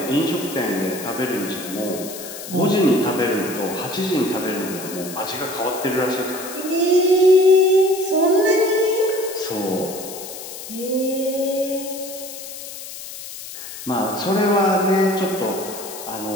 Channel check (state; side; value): noise; left; hiss, 11 dB below the sound